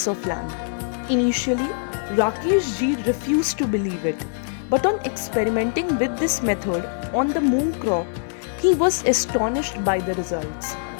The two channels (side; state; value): right; silent; digital silence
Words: of land. Initially, Rakesh ji refused to believe it, but on experimenting with this method on the moong crop, he was astonished by the results.